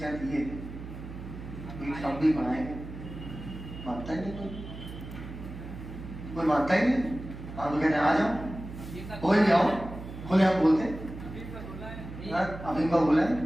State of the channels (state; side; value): noise; right; hum, 11 dB below the sound